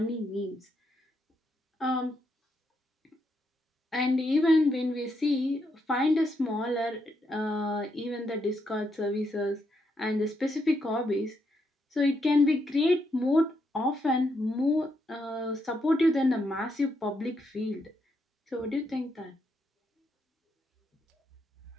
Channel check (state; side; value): normal; both; correlation 0.79